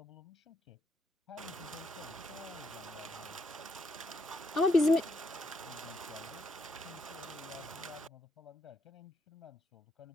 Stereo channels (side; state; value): both; normal; correlation 0.77